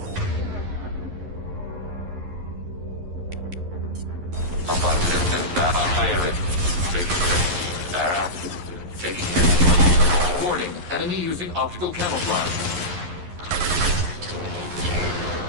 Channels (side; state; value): left; late; 11 ms